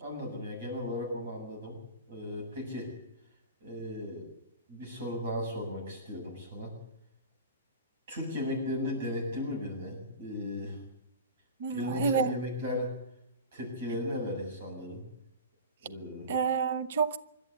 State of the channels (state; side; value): inverted; both; correlation -0.32